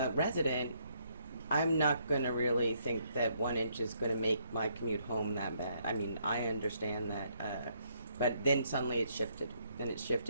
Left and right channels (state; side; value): inverted; both; correlation -0.72